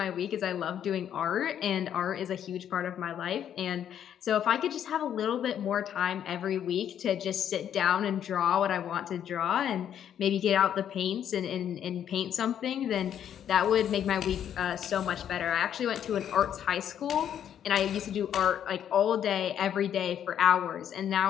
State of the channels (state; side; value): quieter; right; 9.6 dB